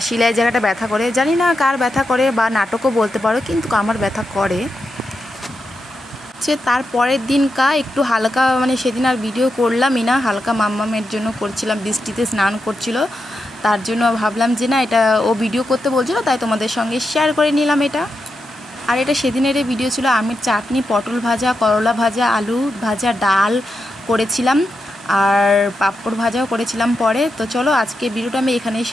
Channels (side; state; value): both; normal; correlation 0.86